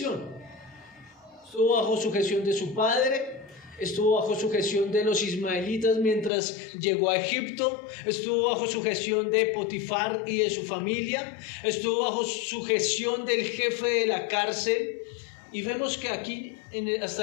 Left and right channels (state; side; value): drops out; right; at 6.3 s